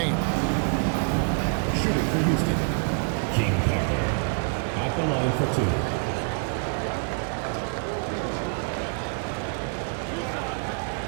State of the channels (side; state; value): left; quieter; 36.7 dB